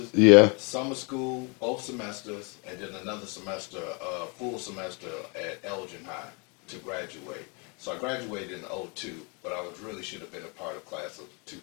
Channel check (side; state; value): right; quieter; 32.7 dB